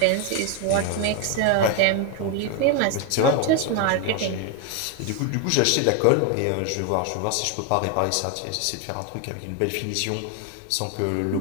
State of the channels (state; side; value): different; both; correlation 0.01